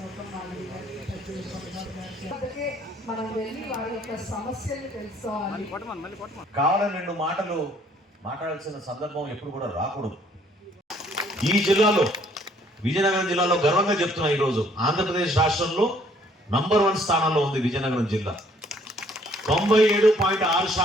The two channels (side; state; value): both; normal; correlation 0.62